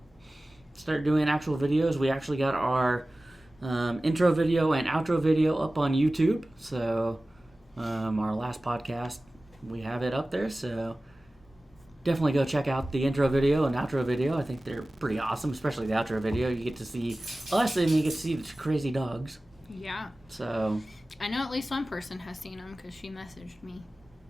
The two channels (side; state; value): both; normal; correlation 0.97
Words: Start doing actual videos. We actually got our intro video and outro video up on YouTube. So our last podcast, we have it up there. So definitely go check out the intro video and outro video. I think they're pretty awesome, especially the outro video. You get to see us and you get to see the crazy dogs. Yeah. So I know at least one person has seen them because she messaged me.